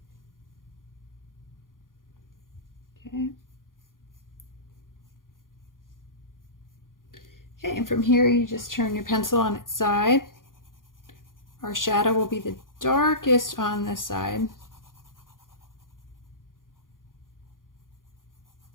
Okay. Okay, and from here you just turn your pencil on its side. Our shadow will be the darkest on this side.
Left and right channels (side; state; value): right; late; 0.90 ms